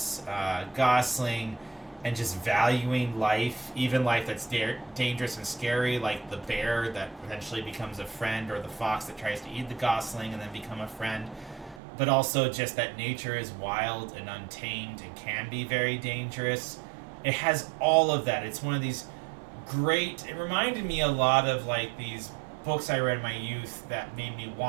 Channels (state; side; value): drops out; left; at 11.8 s